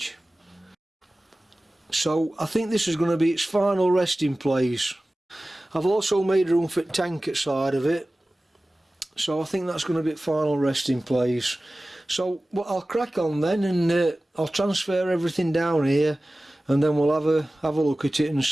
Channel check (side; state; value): both; normal; correlation 0.97